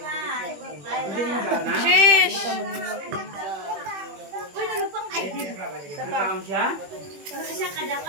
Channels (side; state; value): left; late; 21 ms